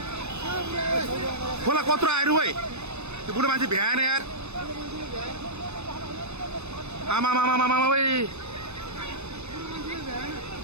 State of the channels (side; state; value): left; late; 0.81 ms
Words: खोला कत्रो आयो है त्यो बुढो मान्छे भ्याएन यार आमा आमा आमा आमा ओए